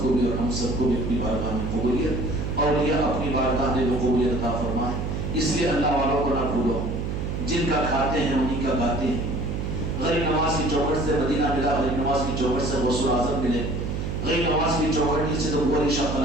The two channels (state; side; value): noise; right; hum, 3 dB below the sound